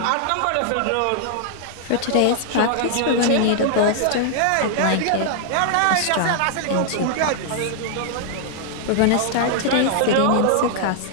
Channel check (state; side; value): different; both; correlation -0.01